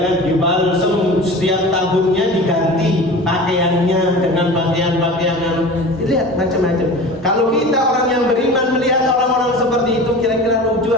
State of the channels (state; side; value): normal; both; correlation 0.35